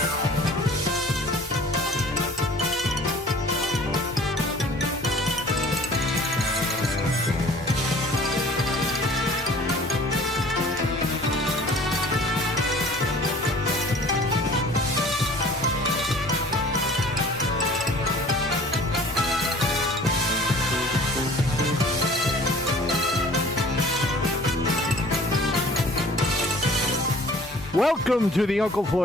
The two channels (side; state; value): both; normal; correlation 0.49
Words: Welcome to the Uncle